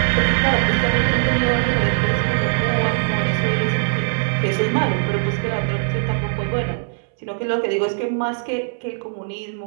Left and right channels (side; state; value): left; silent; 65 dB below the other